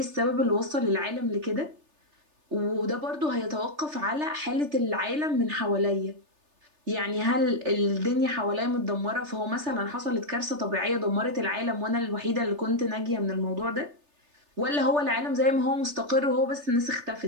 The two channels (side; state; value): left; late; 3.3 ms